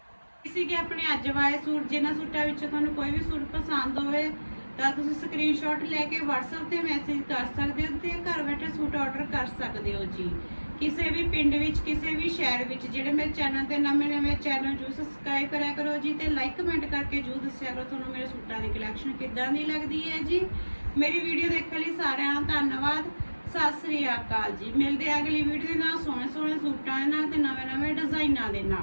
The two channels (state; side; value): inverted; both; correlation -1.00